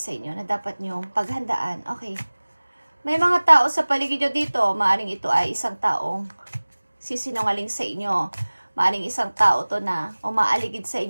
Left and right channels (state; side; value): inverted; both; correlation -1.00